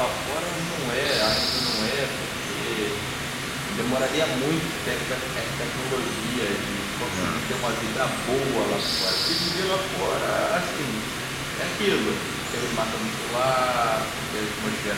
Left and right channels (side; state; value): both; identical; correlation 1.00